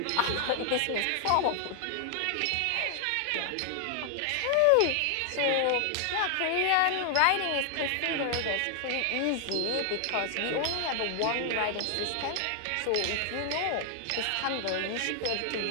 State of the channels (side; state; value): both; different; correlation 0.00